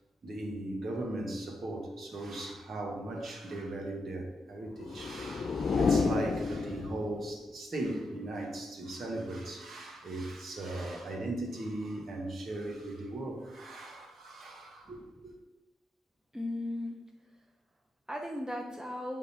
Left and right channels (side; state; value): both; normal; correlation 0.83